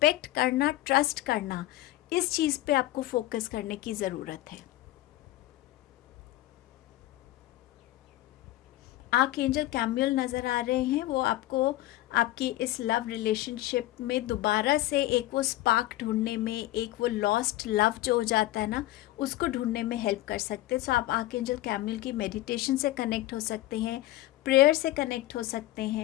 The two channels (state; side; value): quieter; right; 16.2 dB